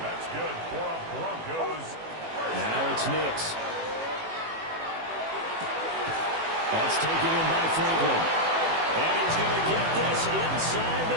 That's good for a Broncos. Now it's Nix. That's taken in by Franklin. And he's going to get this inside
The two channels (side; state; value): left; late; 18 ms